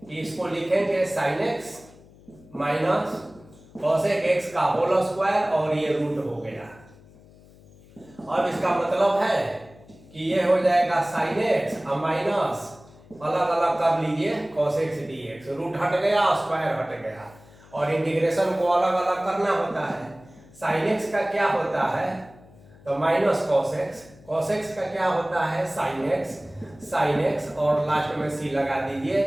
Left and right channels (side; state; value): left; noise; hum, 24 dB below the sound